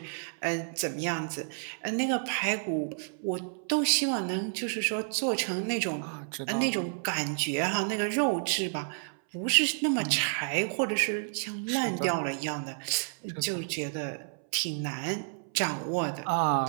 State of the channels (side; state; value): left; silent; 58 dB below the other